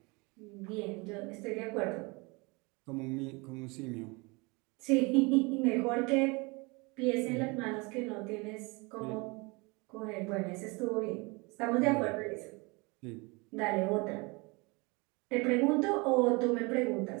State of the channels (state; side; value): quieter; left; 27.4 dB